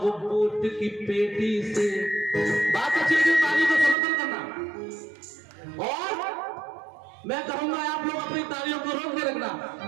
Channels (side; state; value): left; drops out; at 4.0 s